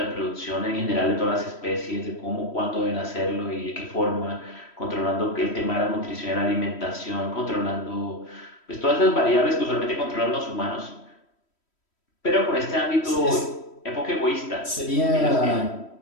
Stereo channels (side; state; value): right; late; 3.1 ms